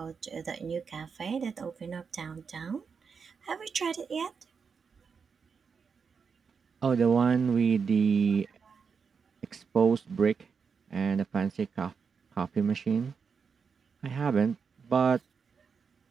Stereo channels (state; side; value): quieter; left; 5.8 dB